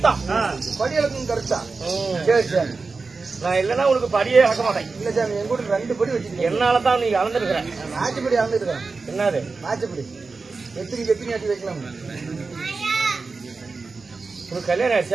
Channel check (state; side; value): quieter; left; 4.2 dB